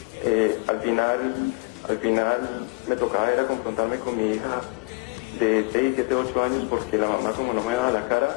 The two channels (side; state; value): right; quieter; 27.3 dB